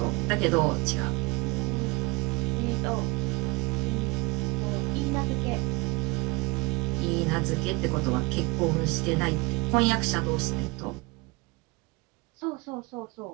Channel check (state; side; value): quieter; left; 24.8 dB